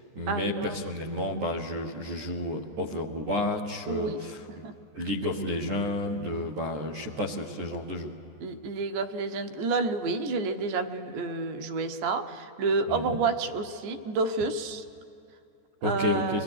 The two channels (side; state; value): left; late; 14 ms